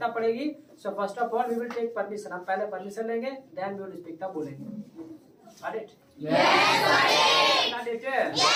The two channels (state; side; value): identical; both; correlation 1.00